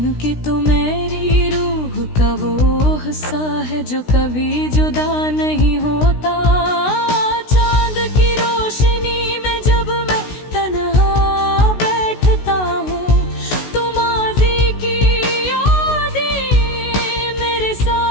तू मेरी रूह का वो हिस्सा है जो कभी जुदा नहीं होता। चांद की रोशनी में जब मैं तन्हा बैठता हूँ, तो माज़ी की यादें मेरे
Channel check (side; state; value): right; late; 16 ms